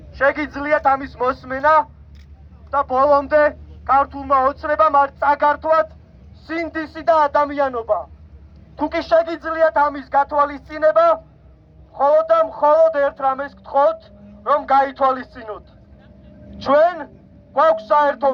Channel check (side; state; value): both; identical; correlation 1.00